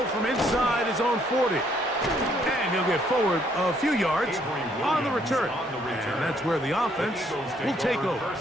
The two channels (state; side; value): normal; both; correlation 0.68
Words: from inside his own 40. And he'll get forward a few yards on the return. And that's where the offense will take over.